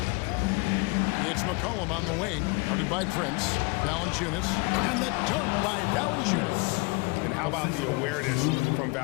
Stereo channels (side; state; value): right; quieter; 27.8 dB